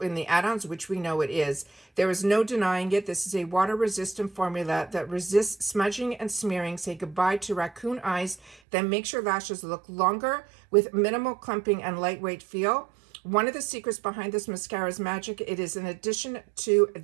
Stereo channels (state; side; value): drops out; left; at 8.6 s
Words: the add-ons, which we know it is. There is no denying it. This is a water-resistant formula that resists smudging and smearing. Say goodbye to raccoon eyes. Then makes your lashes look longer with minimal clumping and lightweight feel. One of the secrets behind this mascara's magic, it is in addition to